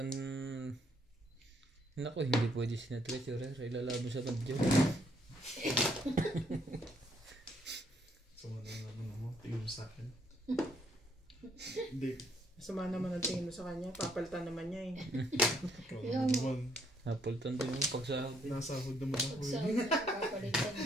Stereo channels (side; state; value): both; normal; correlation 0.69